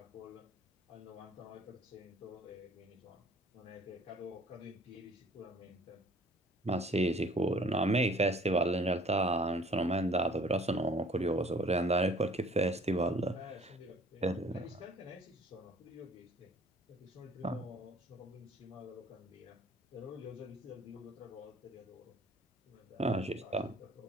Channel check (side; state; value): both; normal; correlation 0.53